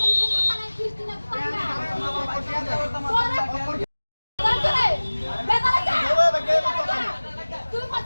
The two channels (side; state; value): both; inverted; correlation -1.00